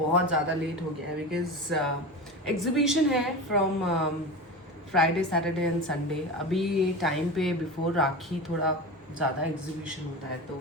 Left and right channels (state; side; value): normal; both; correlation 0.27